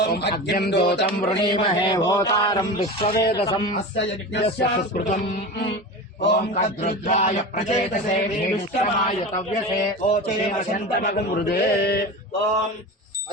అగ్నిం దూతం వృణీమహే హోతారం విశ్వవేదసం అస్య యస్య సుస్మృతం ఓం కద్రుద్రాయ ప్రచేతసే భీష్మాయ తవ్యసే ఓచేన శంతమగం హృదే ఓం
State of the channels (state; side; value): normal; both; correlation 0.29